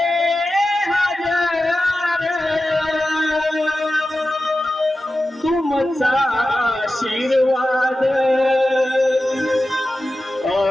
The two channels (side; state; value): both; normal; correlation 0.94